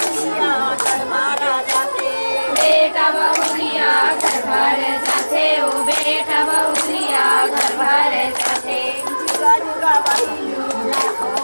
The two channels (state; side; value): inverted; both; correlation -1.00